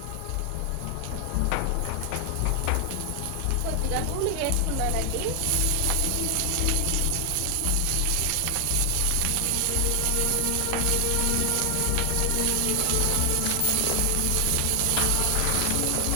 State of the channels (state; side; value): different; both; correlation 0.00